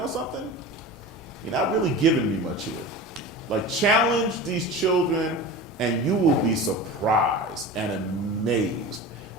something? You're not really giving me much here. Like, challenge these children, and you will be surprised and amazed.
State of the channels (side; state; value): both; normal; correlation 0.32